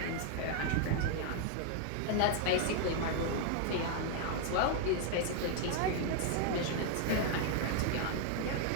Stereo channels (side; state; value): both; different; correlation 0.00